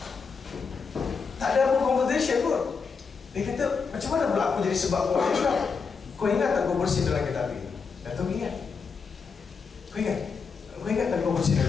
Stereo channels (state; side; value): quieter; right; 5.4 dB